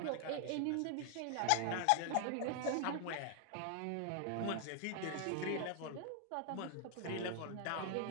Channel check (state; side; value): different; both; correlation 0.00